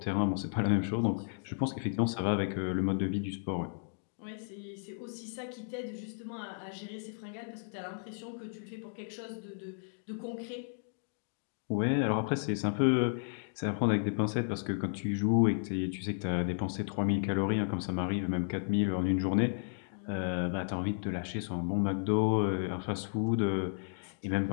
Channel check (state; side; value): silent; right; digital silence